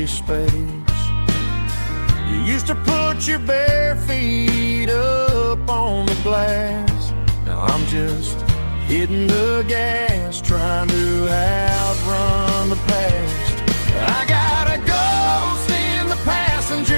space. You used to put your bare feet up on the glass. Now I'm just hitting the gas, trying to outrun the past. I got a ghost in the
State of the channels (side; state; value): both; inverted; correlation -1.00